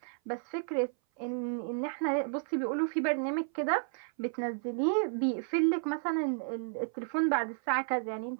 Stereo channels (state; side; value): silent; left; 56 dB below the other